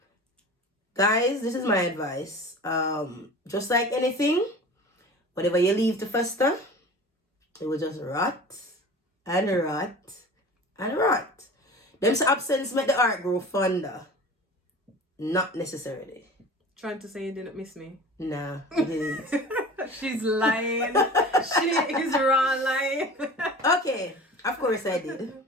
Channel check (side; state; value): both; normal; correlation 0.38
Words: Guys, this is my advice. Just like anything, whatever you leave to fester, it will just rot and rot and rot. Them absence make the heart grow fonder. Not necessarily. Trying to say you didn't miss me? Nah, I didn't. She's lying. She is raw lying. Okay, of course I did.